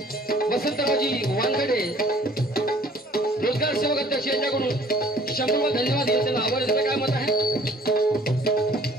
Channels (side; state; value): both; normal; correlation 0.54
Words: वसंतरावजी वानखडे रोजगार सेवक अध्यक्ष यांच्याकडून 100 धन्यवाद देतो. त्याला आभार देतो. काय मत आहे?